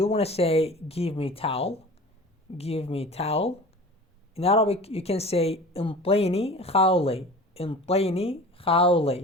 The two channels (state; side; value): normal; both; correlation 0.39